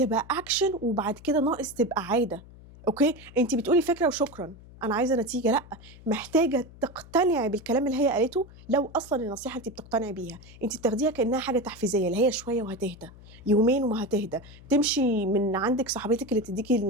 اكشن، وبعد كده ناقص تبقى عادة، اوكي. انت بتقولي فكرة وشكرا انا عايزه نتيجه، لا، محتاجه تقتنعي بالكلام اللي هي قالته. لو اصلا النصيحه انت بتقتنعي بيها، انت بتاخديها كانها حاجه تحفيزيه، اللي هي شويه وهتهدى، يومين وما هتهدى. تمشي من عندك صاحبتك اللي تديكي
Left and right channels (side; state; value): left; noise; hum, 20 dB below the sound